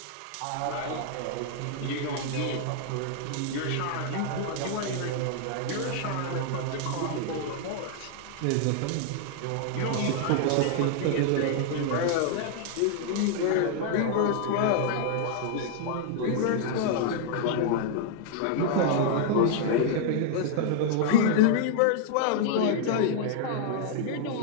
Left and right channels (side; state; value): both; different; correlation 0.00